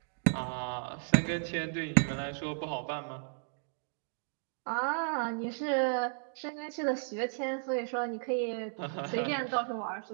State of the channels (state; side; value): silent; left; digital silence